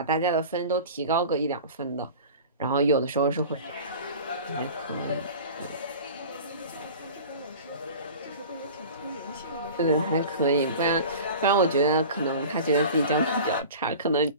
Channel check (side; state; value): both; inverted; correlation -0.38